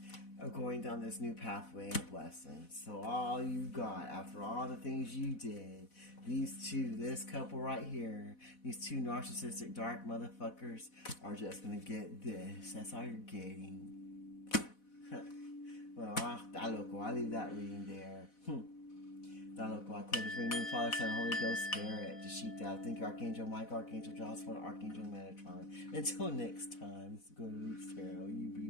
of going down this new pathway of blessings. So all you got, after all the things you did, these two, this couple right here, these two narcissistic dark motherfuckers are just going to get this. That's all you're getting. Well, I'll leave that reading there. I close this reading, Father, Son, Holy Ghost, Spirit, Dashita. Thank you, Archangel Michael, Archangel Joshua, Archangel Metatron. Until next time, this is Good Roots Tarot. You be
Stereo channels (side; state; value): right; late; 4.1 ms